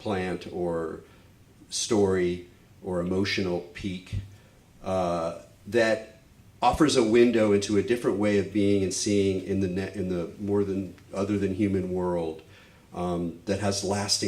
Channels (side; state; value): both; identical; correlation 1.00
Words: or story or emotional peak that offers a window into a different way of being and seeing in the more than other than human world that has